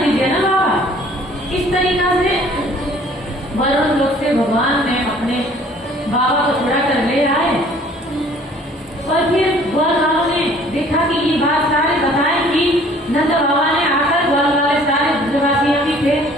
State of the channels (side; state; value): both; normal; correlation 0.54